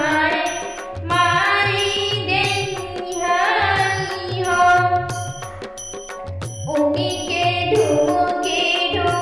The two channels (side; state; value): both; identical; correlation 1.00